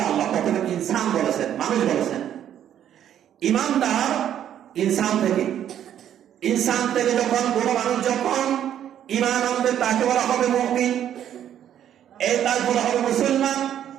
আল্লাহ প্রথমে ইনসান বলেছেন, মানুষ বলেছেন। ইমানদার ইনসান থেকে যখন কোনো মানুষ যখন ঈমান আনবে তাকে বলা হবে মুমিন, তার বলা হবে মুসলমান।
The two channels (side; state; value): left; quieter; 10.3 dB